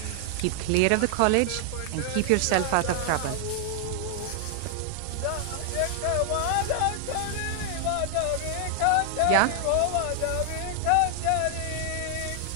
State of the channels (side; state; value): both; different; correlation 0.00